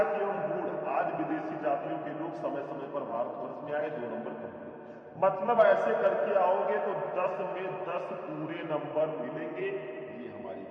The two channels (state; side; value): identical; both; correlation 1.00